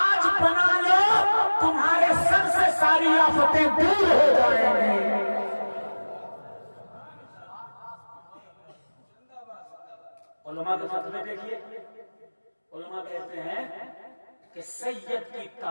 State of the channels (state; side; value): inverted; both; correlation -1.00